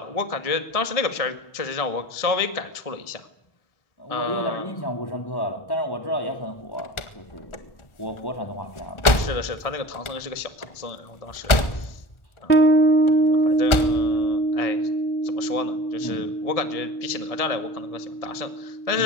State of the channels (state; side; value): late; right; 1.4 ms